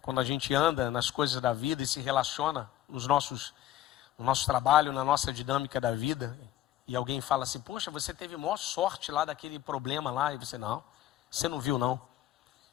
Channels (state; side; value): quieter; right; 13.1 dB